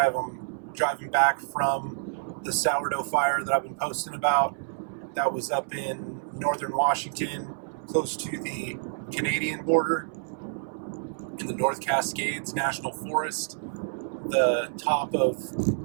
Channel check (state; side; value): silent; left; digital silence